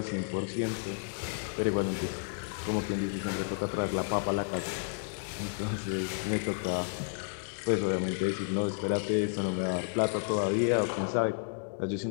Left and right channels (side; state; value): right; silent; digital silence